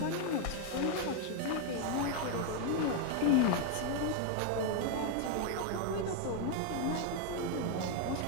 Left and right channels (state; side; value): different; both; correlation 0.01